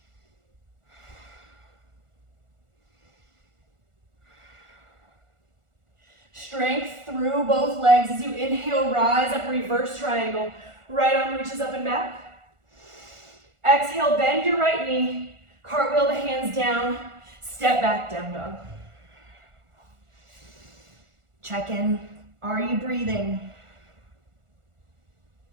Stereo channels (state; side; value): late; left; 1.4 ms